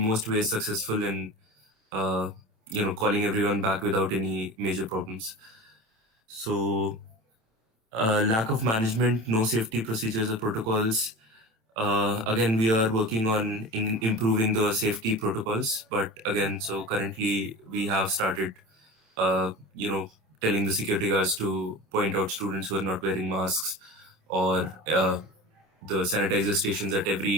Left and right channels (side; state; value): left; late; 27 ms